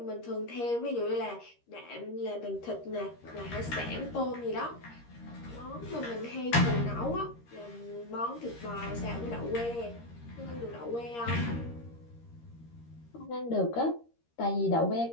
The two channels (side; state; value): right; late; 13 ms